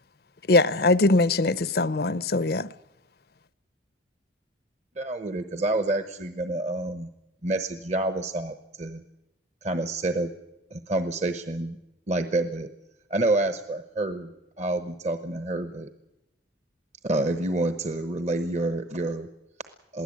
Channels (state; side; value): normal; both; correlation 0.35